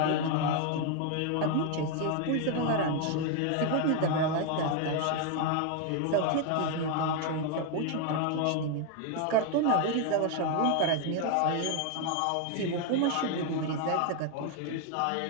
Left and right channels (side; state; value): both; different; correlation 0.01